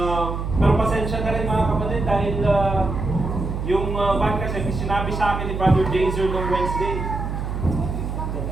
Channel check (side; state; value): right; noise; hum, 4 dB below the sound